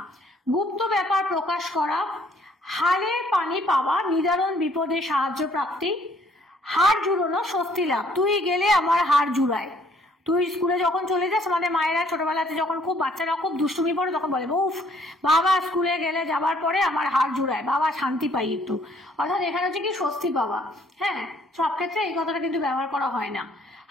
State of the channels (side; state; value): both; normal; correlation 0.63